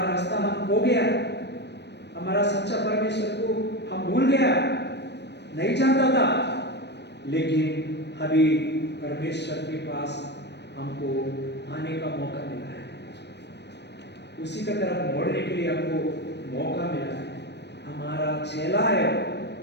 रास्ता हम खो गया, हमारा सच्चा परमेश्वर को हम भूल गया, नहीं जानता था, लेकिन अभी परमेश्वर के पास हमको आने का मौका मिला है, उसी की तरफ मोड़ने के लिए हमको मौका मिला है. हमारा चेला है,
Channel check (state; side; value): late; right; 0.50 ms